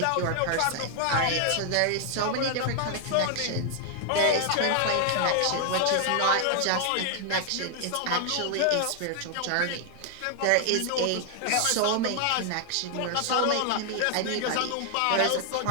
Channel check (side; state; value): both; different; correlation 0.00